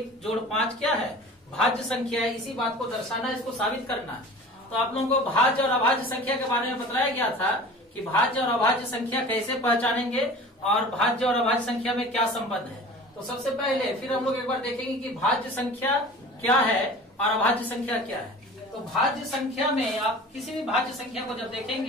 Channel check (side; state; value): both; normal; correlation 0.40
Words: जोड़ 5 क्या है? भाज्य संख्या है। इसी बात को दर्शाना, इसको साबित करना है। तो आप लोगों को भाज्य और अभाज्य संख्या के बारे में बताया गया था कि भाज्य और अभाज्य संख्या कैसे पहचानेंगे और भाज्य और अभाज्य संख्या में क्या संबंध है। तो सबसे पहले फिर हम लोग एक बार देखेंगे कि भाज्य संख्या क्या है और अभाज्य संख्या क्या है। तो भाज्य संख्या में आप किसी भी भाज्य संख्या को जब